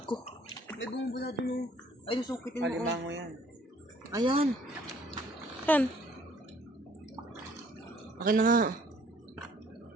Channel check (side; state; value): both; normal; correlation 0.58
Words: May bumubula dun, oh. Ay, nasukitin mo, oh. Alimango yan. Ayan. Yan. Akin na nga.